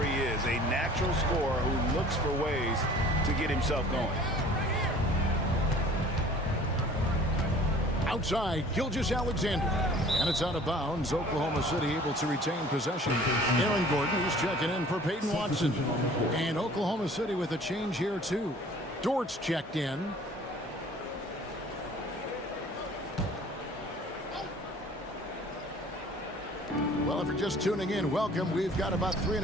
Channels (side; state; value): both; normal; correlation 0.50